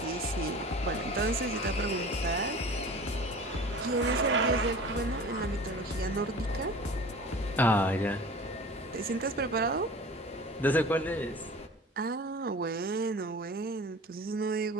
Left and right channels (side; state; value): both; normal; correlation 0.40